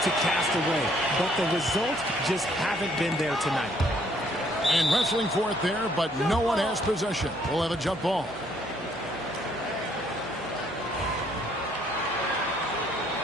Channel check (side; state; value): left; noise; hum, 23 dB below the sound